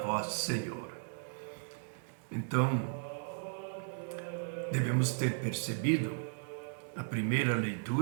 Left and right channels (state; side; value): silent; left; digital silence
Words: Senhor. Então, devemos ter percebido, a primeira